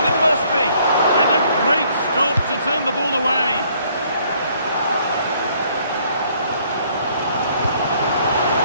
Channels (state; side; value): inverted; both; correlation -0.63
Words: it must be. And a great stop to turn the ball away.